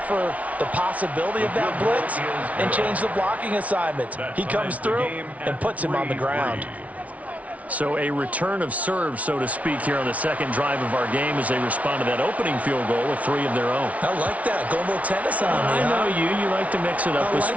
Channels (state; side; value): late; left; 0.068 ms